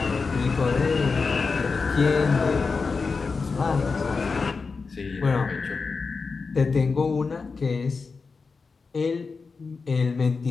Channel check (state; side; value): quieter; right; 4.6 dB